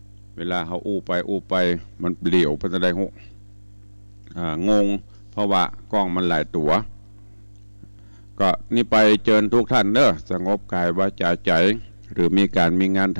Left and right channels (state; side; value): inverted; both; correlation -1.00